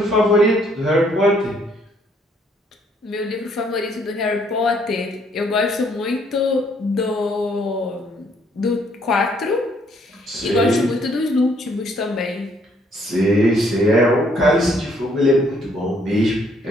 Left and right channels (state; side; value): normal; both; correlation 0.67